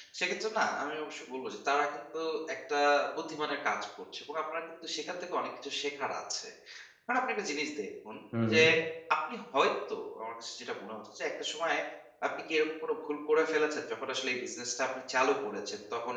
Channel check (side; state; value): both; identical; correlation 1.00